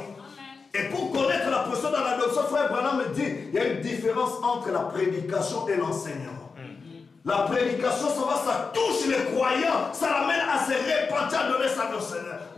Et pour connaître la personne dans l'adoption, frère Branham me dit, il y a une différence entre la prédication et l'enseignement. La prédication, ça touche les croyants, ça l'amène à se repentir, à donner sa vie au Seigneur.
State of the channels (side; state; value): right; quieter; 4.7 dB